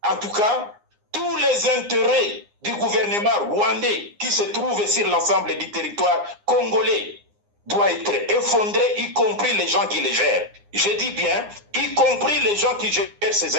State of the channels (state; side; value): late; left; 9.7 ms